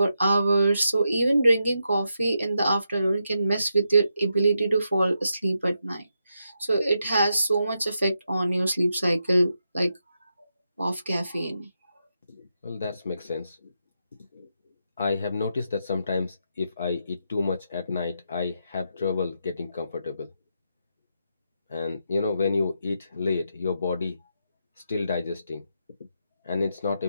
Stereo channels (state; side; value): inverted; both; correlation -0.84